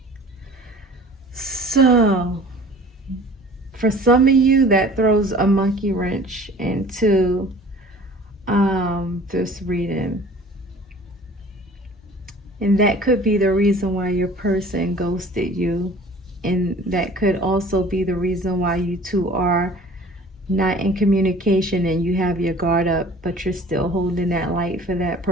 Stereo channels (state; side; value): normal; both; correlation 0.47